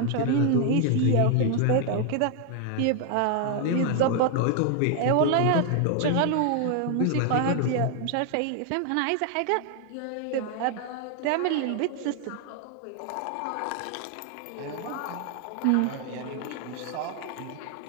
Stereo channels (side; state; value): both; different; correlation 0.00